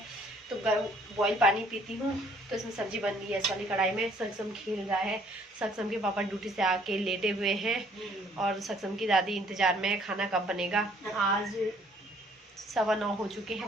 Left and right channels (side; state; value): both; normal; correlation 0.61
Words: तो बॉईल पानी पीती हूँ। तो इसमें सब्जी बन रही है इस वाली कढ़ाई में। सक्षम खेल रहा है। सक्षम के पापा ड्यूटी से आके लेटे हुए हैं और सक्षम की दादी इंतजार में है खाना कब बनेगा। आज 9:15 हो चुके हैं